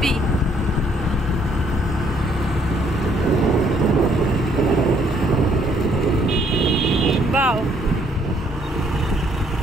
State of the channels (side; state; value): both; normal; correlation 0.66